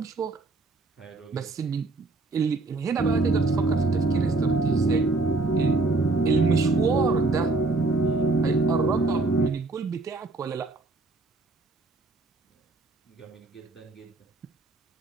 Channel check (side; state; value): left; quieter; 3.4 dB